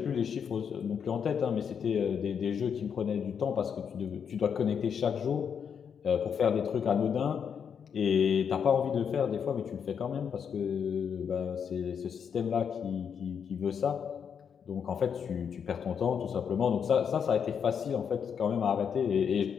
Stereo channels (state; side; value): quieter; right; 7.3 dB